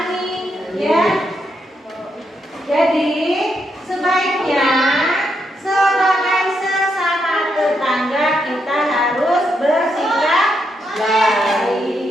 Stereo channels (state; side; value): normal; both; correlation 0.80